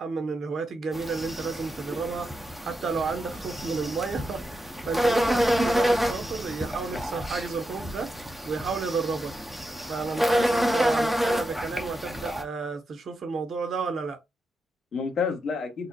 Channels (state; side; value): normal; both; correlation 0.86